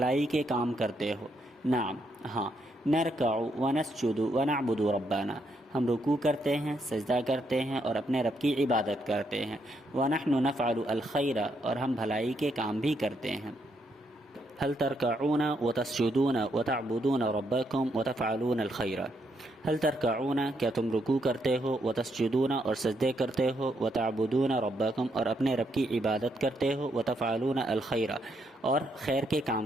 کے کام کرتے ہو؟ نعم، ہاں۔ نرکع ونسجد ونعبد ربنا، ہم رکوع کرتے ہیں، سجدہ کرتے ہیں اور اپنے رب کی عبادت کرتے ہیں۔ ونحن نفعل الخیر، اور ہم بھلائی کے کام بھی کرتے ہیں۔ هل ترکعون وتسجدون وتعبدون ربکم وتفعلون الخیر؟ هل ترکعون، کیا تم رکوع کرتے ہو، وتسجدون اور سجدے کرتے ہو، وتعبدون ربکم اور اپنے رب کی عبادت کرتے ہو، وتفعلون الخیر اور خیر کے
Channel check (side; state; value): both; normal; correlation 0.77